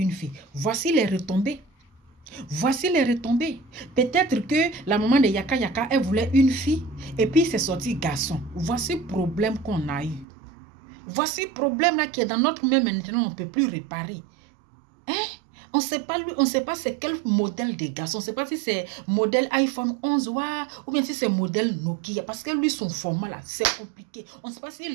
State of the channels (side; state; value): left; drops out; at 10.2 s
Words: fille. Voici les retombées. Voici les retombées. Peut-être que la maman de Yaka, elle voulait une fille et puis c'est sorti garçon. Voici le problème qu'on a eu. Voici le problème là qui est dans notre même maintenant, on ne peut plus réparer. Hein? On ne sait pas lui, on ne sait pas c'est quel modèle de garçon. On ne sait pas si c'est modèle iPhone 11 ou bien si c'est modèle Nokia. Parce que lui, son format là, c'est compliqué. On ne sait pas